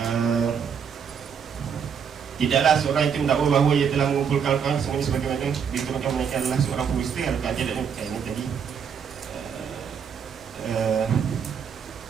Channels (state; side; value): quieter; left; 7.2 dB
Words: tidaklah seorang itu mendakwa bahawa ia telah mengumpulkan kawan semuanya sebagaimana diterangkan mereka adalah seorang pembusta. Adakah dia ini tadi